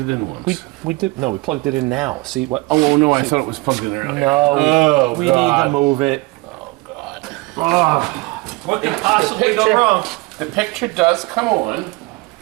in once. We did. No, we plugged it in now. See what? Oh no, I thought it was plugged in earlier. No, we need to move it. Oh God. What could possibly go wrong? The picture does come on.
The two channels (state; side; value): quieter; left; 24.1 dB